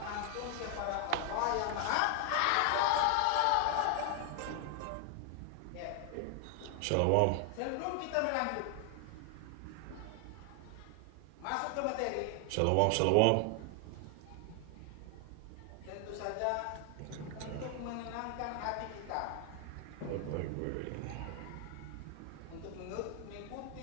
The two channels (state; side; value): different; both; correlation 0.00